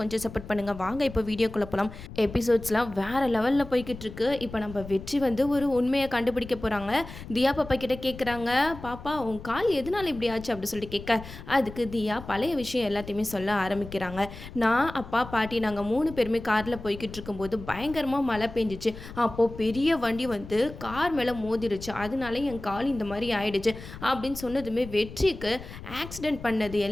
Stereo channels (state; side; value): noise; left; rumble, 13 dB below the sound